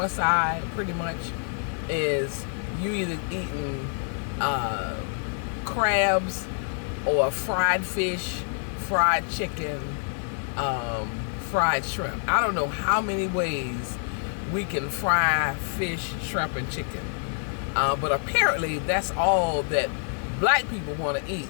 side pretty much is you either eating crabs or fried fish, fried chicken, fried shrimp. I don't know how many ways we can fry fish, shrimp, and chicken. But apparently that's all that black people want to eat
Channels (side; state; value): right; silent; 59 dB below the other